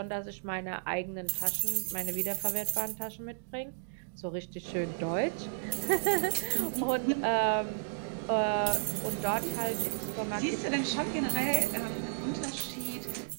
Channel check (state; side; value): silent; left; digital silence